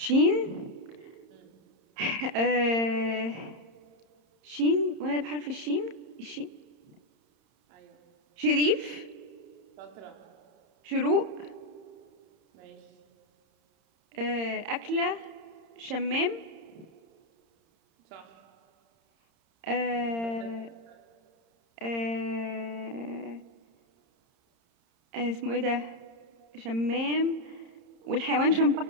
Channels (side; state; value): left; late; 30 ms